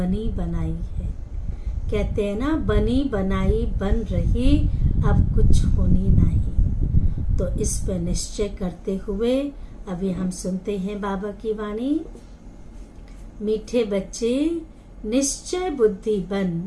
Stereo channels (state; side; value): identical; both; correlation 1.00